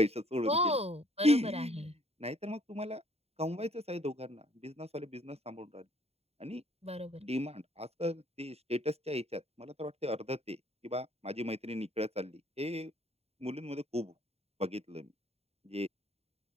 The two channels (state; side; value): late; left; 0.30 ms